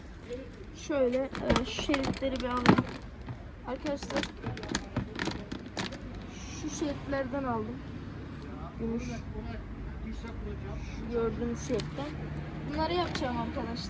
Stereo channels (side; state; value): both; identical; correlation 1.00